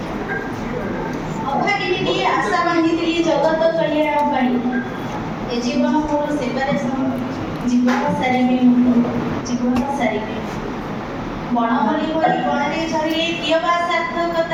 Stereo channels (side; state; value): both; identical; correlation 1.00